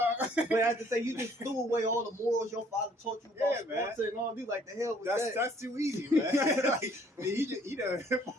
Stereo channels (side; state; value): both; normal; correlation 0.60